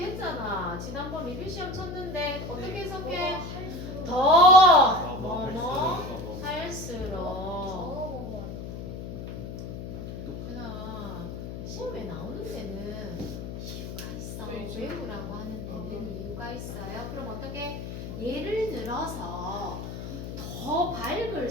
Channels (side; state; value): left; noise; hum, 7 dB below the sound